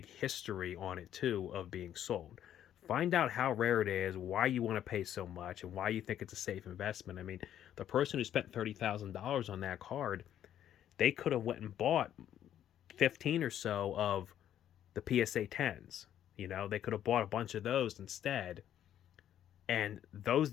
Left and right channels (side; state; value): right; quieter; 10.7 dB